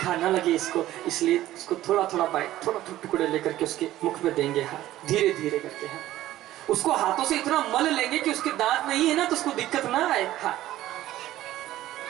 ना लगे इसको, इसलिए उसको थोड़ा थोड़ा बाइट, थोड़ा थोड़ा टुकड़े लेकर के उसके मुख में देंगे। हाँ। धीरे धीरे करके। हाँ। उसको हाथों से इतना मल लेंगे कि उसके दांत नहीं है ना तो उसको दिक्कत ना आए। हाँ।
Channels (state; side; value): quieter; left; 14.5 dB